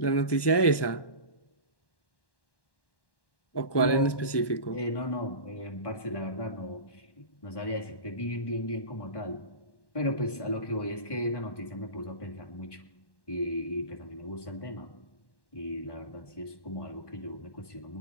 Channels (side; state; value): right; late; 1.1 ms